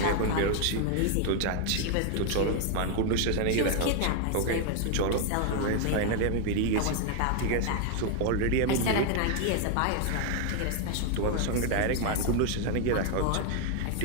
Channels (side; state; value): both; different; correlation 0.00